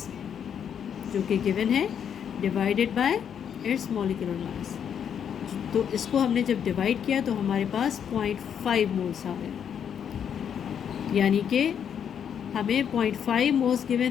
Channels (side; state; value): right; quieter; 8.3 dB